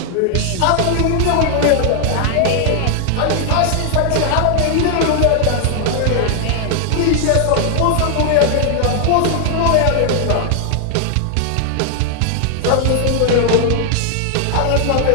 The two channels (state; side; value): different; both; correlation 0.00